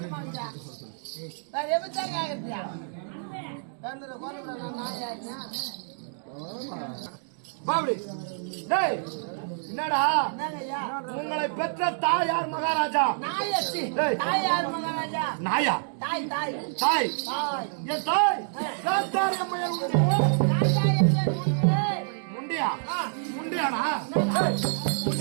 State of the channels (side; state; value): left; silent; digital silence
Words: என்னடா உங்களை பெற்ற தாயார் மகாராஜா. தாயார் மகாராஜா நாயா தாய் தாய் தாய் என் தாய் முண்டியா முண்டியானா